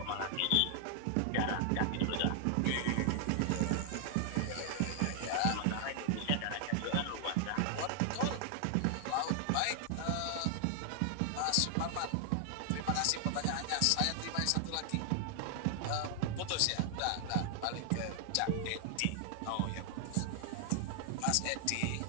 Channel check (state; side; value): different; both; correlation 0.00